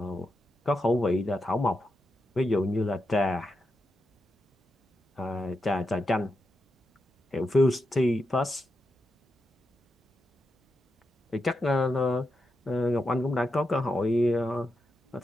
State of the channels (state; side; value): normal; both; correlation 0.86